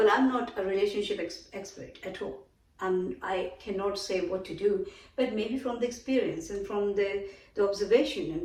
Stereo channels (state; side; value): identical; both; correlation 1.00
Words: I'm not a relationship expert at all. I cannot say what to do, but maybe from the experience and from the observation